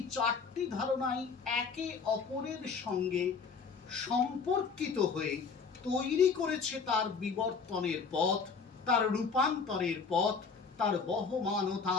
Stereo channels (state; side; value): quieter; right; 5.3 dB